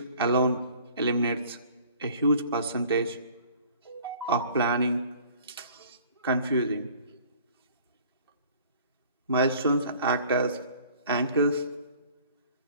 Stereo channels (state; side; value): inverted; both; correlation -0.51